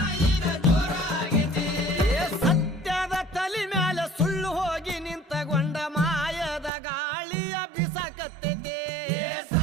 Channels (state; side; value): drops out; left; at 6.7 s